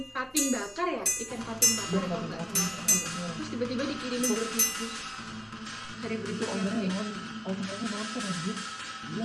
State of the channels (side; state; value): both; identical; correlation 1.00